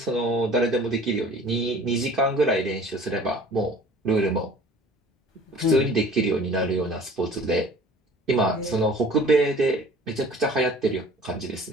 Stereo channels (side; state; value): both; normal; correlation 0.47